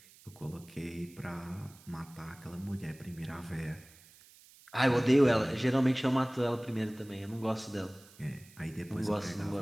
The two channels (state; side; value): noise; right; hiss, 24 dB below the sound